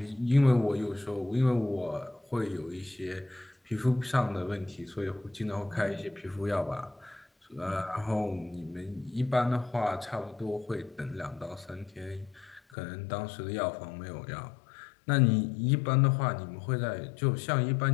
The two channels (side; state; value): right; drops out; at 12.6 s